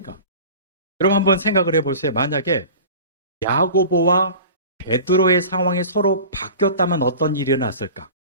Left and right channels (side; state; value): both; inverted; correlation -0.38